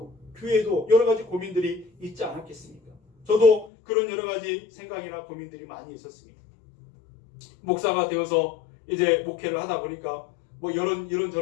교회에도 여러 가지 고민들이 있지 않았겠습니까? 저도 그런 여러 가지 생각이나 고민들이 많이 있었습니다. 목사가 되어서 이제 목회를 하다 보니까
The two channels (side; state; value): right; drops out; at 3.7 s